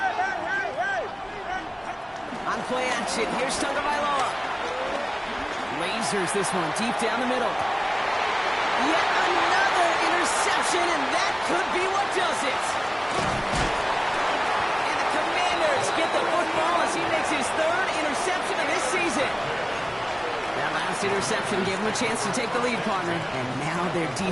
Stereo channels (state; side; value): identical; both; correlation 1.00